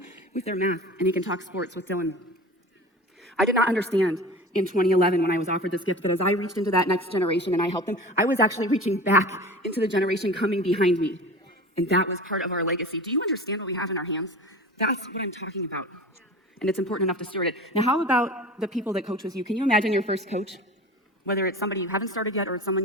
with their math, and he can talk sports with Dylan. I did not understand in 2011 when I was offered this gift, but as I reached into that next generation and I helped them, I was actually reaching back into the generation coming behind me. And that was part of our legacy. Do you understand what we have in our hands? That's what I'm talking about. And it's important enough to steward it. Now, how about the people that coach with you? Can you imagine your first coach? Whether it's somebody you haven't started yet or it's someone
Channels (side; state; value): both; normal; correlation 0.36